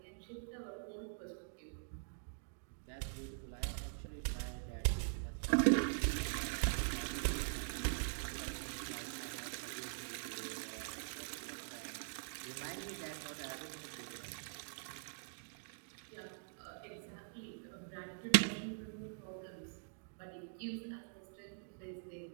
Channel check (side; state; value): left; silent; digital silence